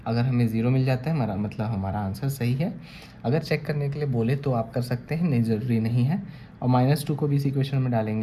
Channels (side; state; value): both; identical; correlation 1.00